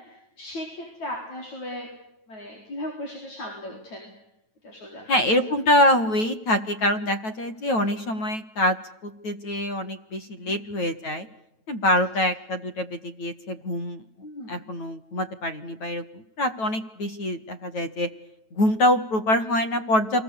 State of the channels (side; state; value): right; late; 9.2 ms